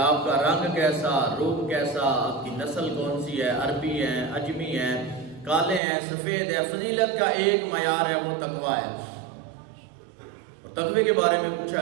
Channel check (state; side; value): drops out; left; at 5.8 s